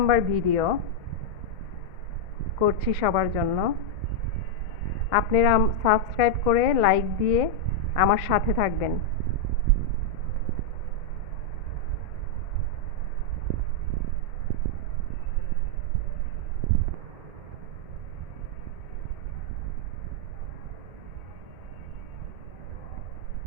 ভিডিও করছি সবার জন্য। আপনারা সাবস্ক্রাইব করে লাইক দিয়ে আমার সাথে থাকবেন।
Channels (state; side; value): late; left; 2.1 ms